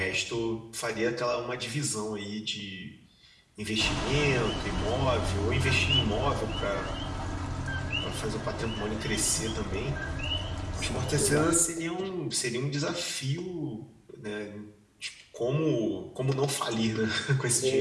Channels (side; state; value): both; identical; correlation 1.00